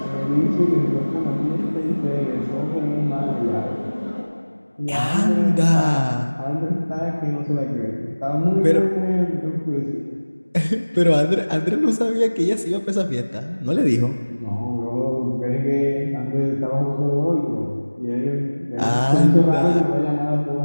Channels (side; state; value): both; inverted; correlation -1.00